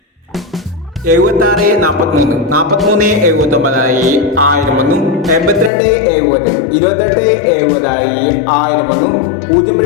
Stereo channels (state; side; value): drops out; right; at 5.7 s